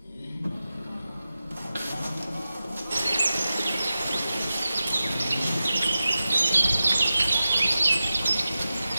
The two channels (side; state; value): both; inverted; correlation -0.93